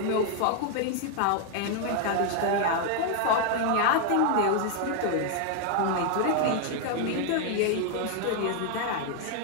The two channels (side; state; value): both; different; correlation 0.00